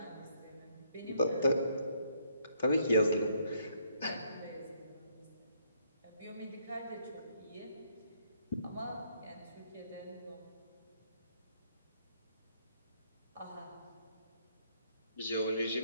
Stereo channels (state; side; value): inverted; both; correlation -0.69